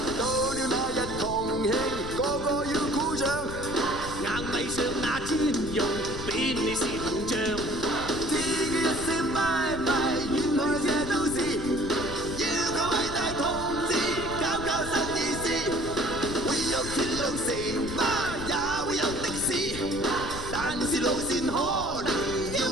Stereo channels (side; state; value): left; noise; rumble, 9 dB below the sound